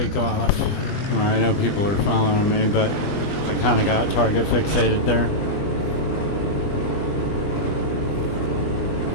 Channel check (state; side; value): late; right; 20 ms